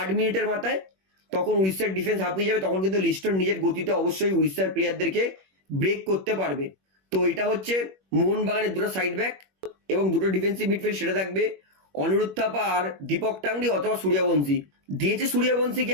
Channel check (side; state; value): left; late; 21 ms